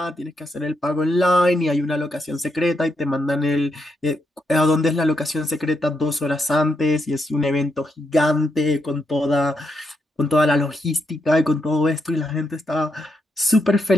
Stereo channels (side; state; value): both; normal; correlation 0.81